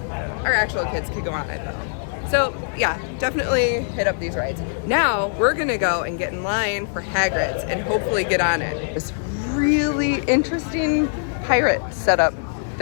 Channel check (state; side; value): silent; right; 64 dB below the other